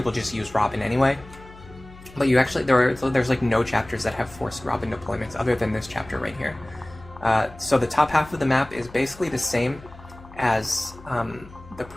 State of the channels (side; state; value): left; noise; hum, 20 dB below the sound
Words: just use Robin anyway. But you actually, there's like no chapters that have forced Robin deployments other than this chapter right here. So the top half of the map is basically the same as not